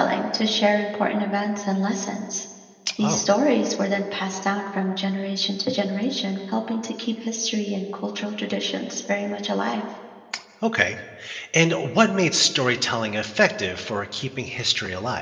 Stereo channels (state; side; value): identical; both; correlation 1.00